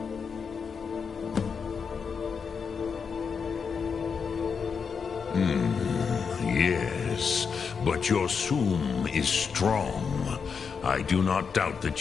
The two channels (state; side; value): quieter; right; 6.0 dB